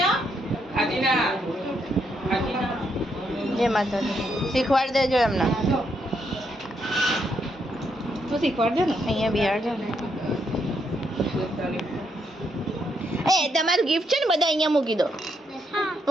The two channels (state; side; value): normal; both; correlation 0.77